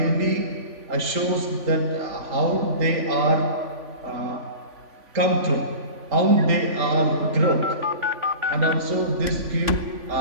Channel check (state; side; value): late; left; 3.5 ms